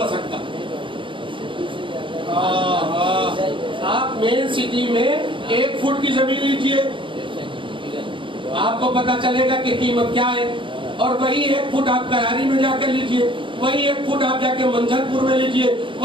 سکتا. آپ مین سٹی میں 1 فٹ کی زمین لیجئے آپ کو پتا چلے گا کہ قیمت کیا ہے. اور وہی 1 فٹ آپ کراری میں جا کر لیجئے, وہی 1 فٹ آپ جا کے منجر پور میں لیجئے,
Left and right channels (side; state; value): left; late; 0.24 ms